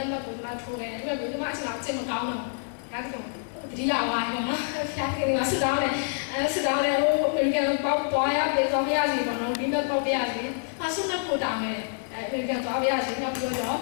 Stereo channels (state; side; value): silent; right; 60 dB below the other